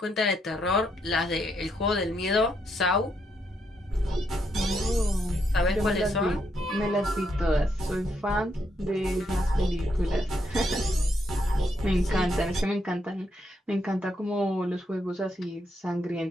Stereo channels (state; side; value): normal; both; correlation 0.78